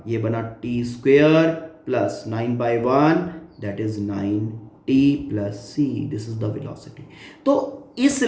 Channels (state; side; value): identical; both; correlation 1.00